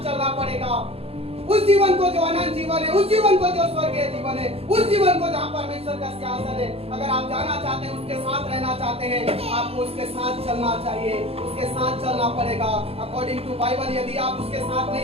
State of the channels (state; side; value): late; left; 0.29 ms